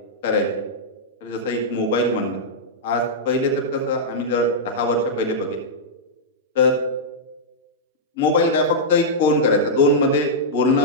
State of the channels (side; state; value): both; normal; correlation -0.10